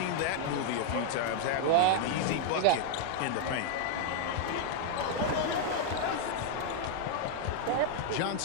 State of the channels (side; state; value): both; different; correlation 0.00